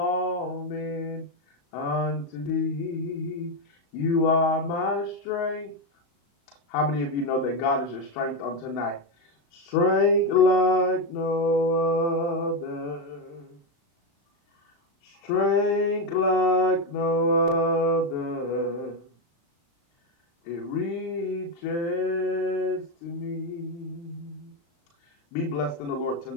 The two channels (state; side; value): late; right; 35 ms